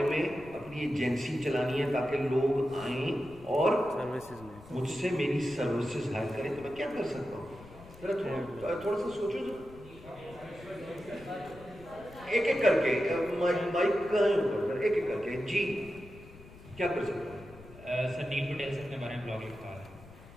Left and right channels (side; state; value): left; noise; rumble, 19 dB below the sound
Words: में अपनी एजेंसी चलानी है ताकि लोग आएं और मुझसे मेरी सर्विसेज हायर करें, तो मैं क्या कर सकता हूँ? जरा थोड़ा सा सोचो. जो एक एक करके माइक का ऊपर एक एक करके जी क्या कर सकता हूँ? सर नील पटेल सर के बारे में ब्लॉग लिखा है.